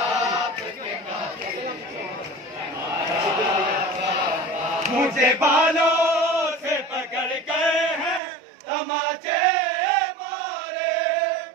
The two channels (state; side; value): drops out; left; at 8.2 s